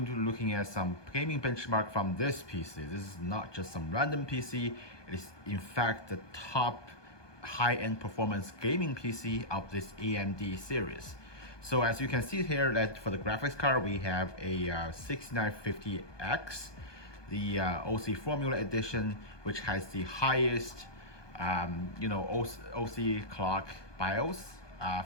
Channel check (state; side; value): late; right; 1.2 ms